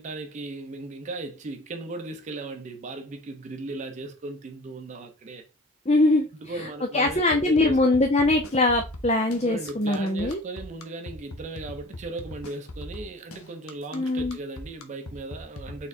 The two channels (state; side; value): normal; both; correlation 0.44